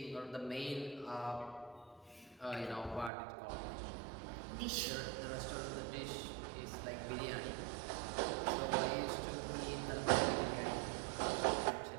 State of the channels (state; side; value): drops out; left; at 3.1 s